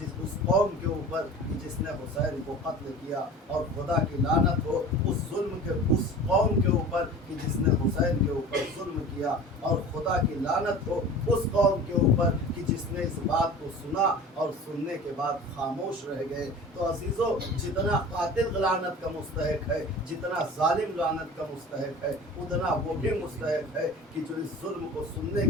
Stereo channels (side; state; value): both; normal; correlation 0.39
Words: اس قوم کے اوپر کہ جس نے حسین کو قتل کیا، اور خدا کی لعنت ہو اس قوم کے اوپر کہ جس نے حسین کے اوپر ظلم کیا، اور خدا کی لعنت ہو اس قوم کے اوپر کہ جس نے اس بات کو سنا اور سننے کے بعد خاموش رہ گئے۔ تو عزیزو، جتنا قاتل لعنت کا مستحق ہے، جتنا ظالم لعنت کا مستحق ہے، اتنا وہ بھی مستحق ہے کہ جو اس ظلم کو سننے